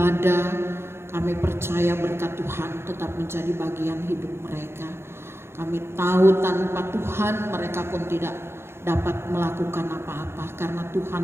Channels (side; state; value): left; late; 0.12 ms